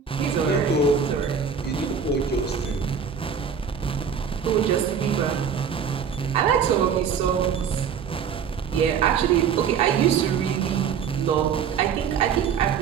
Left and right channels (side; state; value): left; quieter; 7.1 dB